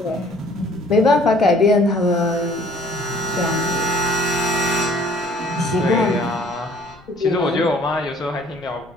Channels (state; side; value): noise; left; rumble, 26 dB below the sound